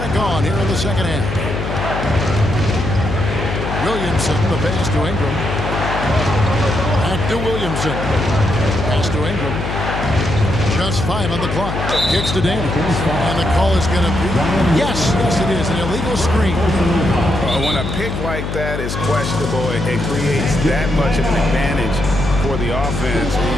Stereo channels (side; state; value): left; noise; hum, 4 dB below the sound